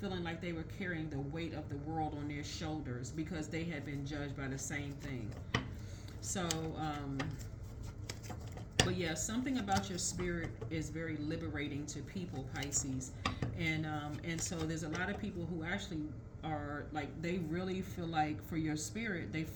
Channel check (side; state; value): both; identical; correlation 1.00